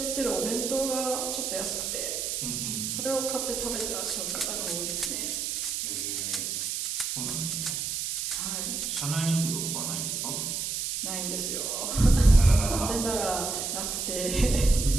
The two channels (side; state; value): right; noise; hiss, 2 dB below the sound